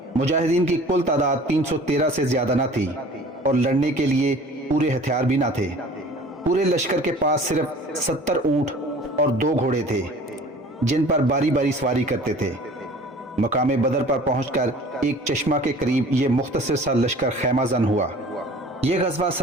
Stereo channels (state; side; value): normal; both; correlation 0.46